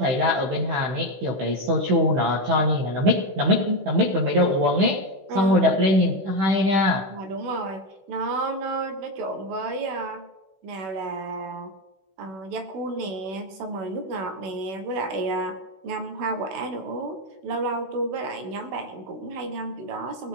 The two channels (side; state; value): left; late; 16 ms